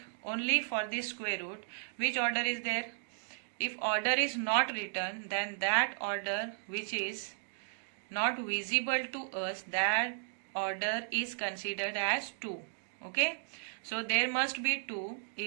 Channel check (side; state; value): left; silent; digital silence